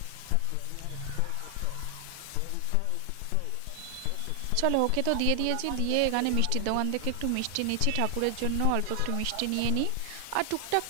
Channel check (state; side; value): different; both; correlation 0.00